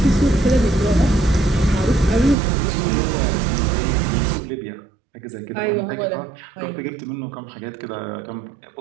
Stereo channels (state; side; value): drops out; left; at 2.4 s